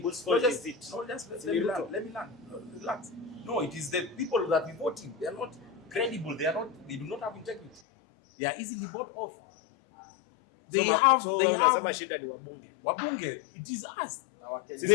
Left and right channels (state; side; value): drops out; right; at 7.8 s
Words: let me learn. Relax. No, it is the people that we voting. They are not credible. They do not have integrity. They are easily bought off. They have shida ni wabunge. Wabunge, it is us.